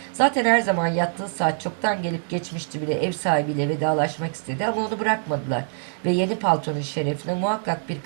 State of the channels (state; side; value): silent; left; 63 dB below the other